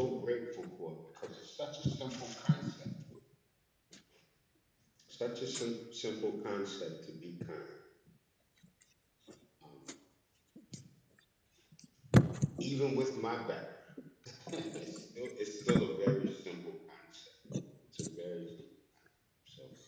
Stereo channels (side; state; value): both; identical; correlation 1.00